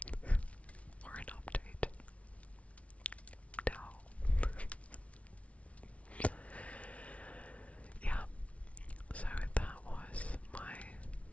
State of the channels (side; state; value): right; late; 0.064 ms